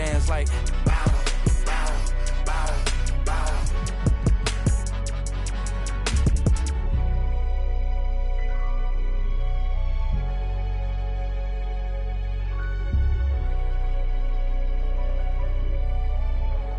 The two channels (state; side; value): identical; both; correlation 1.00